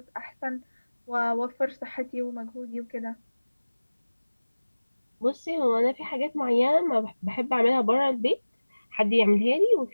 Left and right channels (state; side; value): inverted; both; correlation -1.00